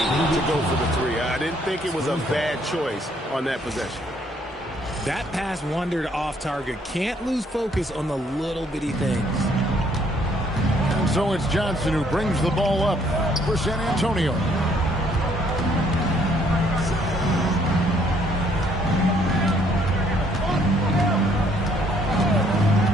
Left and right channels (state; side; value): normal; both; correlation 0.66